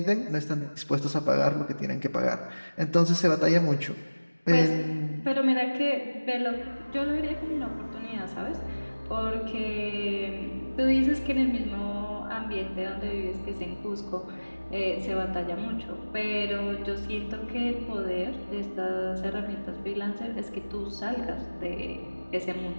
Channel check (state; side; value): inverted; both; correlation -1.00